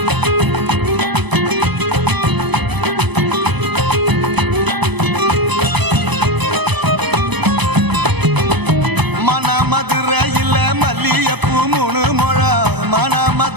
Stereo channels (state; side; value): late; left; 0.99 ms